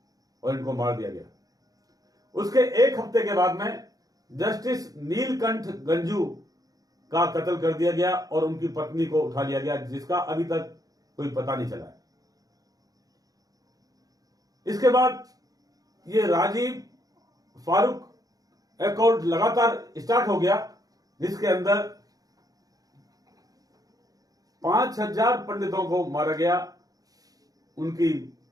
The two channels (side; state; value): left; late; 0.18 ms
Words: और इनको मार दिया गया। उसके एक हफ्ते के बाद में जस्टिस नीलकंठ गंजू का कत्ल कर दिया गया और उनकी पत्नी को उठा लिया गया, जिसका अभी तक कोई पता नहीं चला है। इसके बाद ये राजीव फारूक अकॉर्ड लगातार स्टार्ट हो गया, जिसके अंदर 5000 पंडितों को मारा गया, उनकी